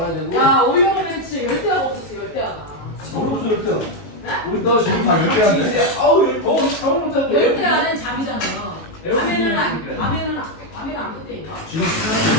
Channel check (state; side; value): late; right; 19 ms